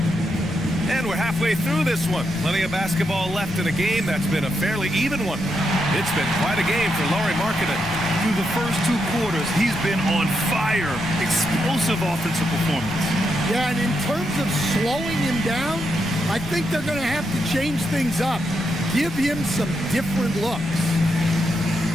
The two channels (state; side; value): noise; left; rumble, 16 dB below the sound